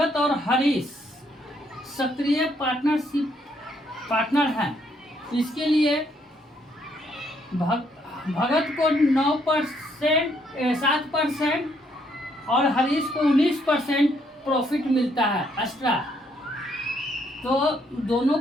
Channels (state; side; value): normal; both; correlation 0.71